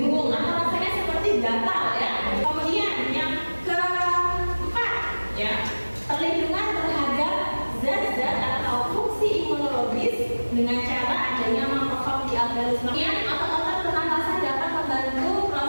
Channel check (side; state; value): both; inverted; correlation -1.00